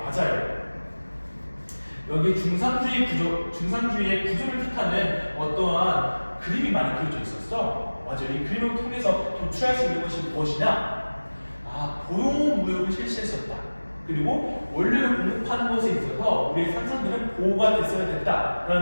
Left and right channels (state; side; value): inverted; both; correlation -1.00